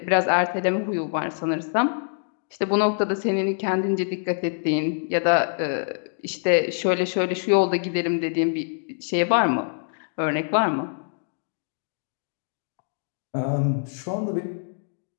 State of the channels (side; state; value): right; silent; digital silence